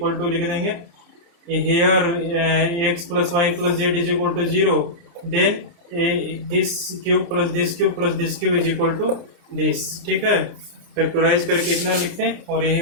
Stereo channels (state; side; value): late; left; 29 ms